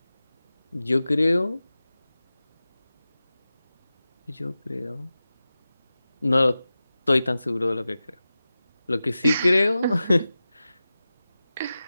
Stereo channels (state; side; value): inverted; both; correlation -0.95